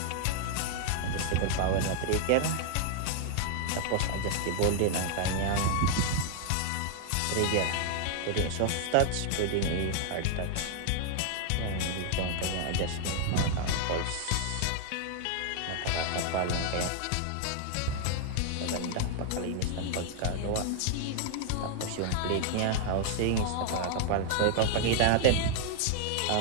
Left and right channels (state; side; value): different; both; correlation 0.00